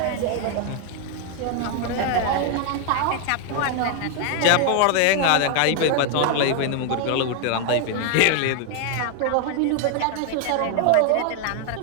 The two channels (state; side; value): different; both; correlation 0.00